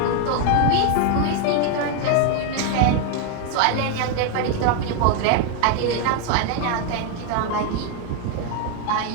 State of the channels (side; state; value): both; different; correlation 0.01